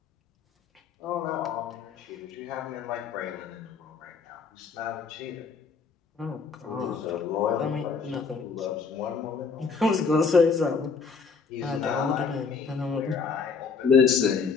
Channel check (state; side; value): quieter; right; 5.3 dB